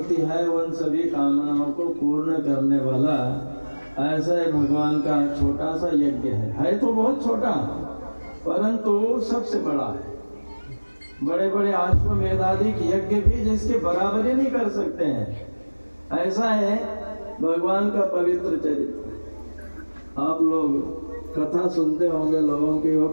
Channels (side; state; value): both; inverted; correlation -1.00